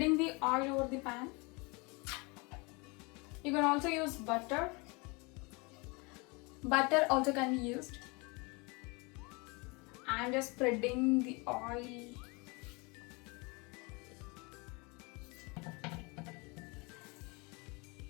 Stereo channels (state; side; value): quieter; right; 28.3 dB